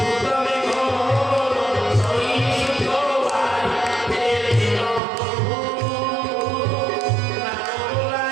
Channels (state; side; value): drops out; left; at 5.0 s